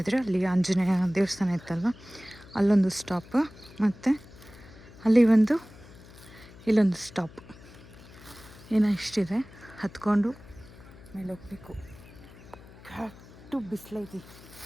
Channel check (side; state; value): left; noise; hum, 20 dB below the sound